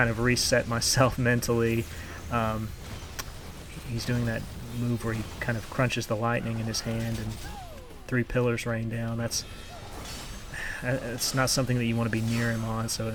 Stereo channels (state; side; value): identical; both; correlation 1.00